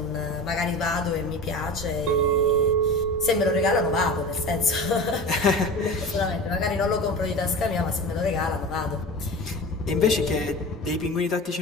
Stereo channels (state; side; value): normal; both; correlation 0.32